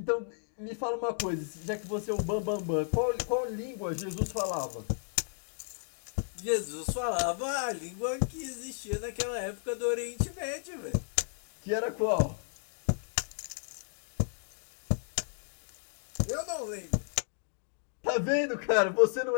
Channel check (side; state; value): right; silent; digital silence